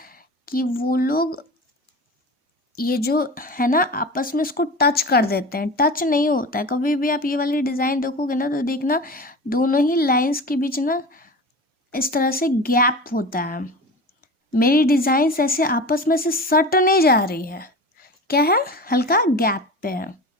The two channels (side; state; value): both; normal; correlation 0.32